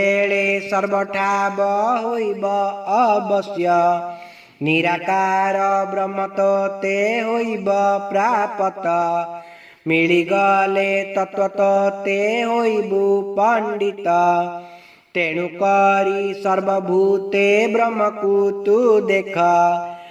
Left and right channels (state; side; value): identical; both; correlation 1.00